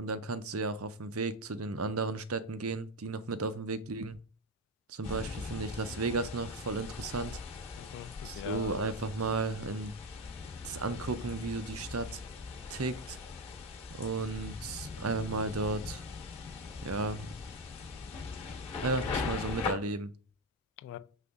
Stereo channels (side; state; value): both; normal; correlation 0.12